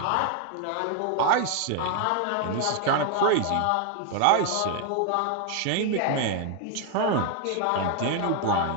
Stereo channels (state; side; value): different; both; correlation 0.00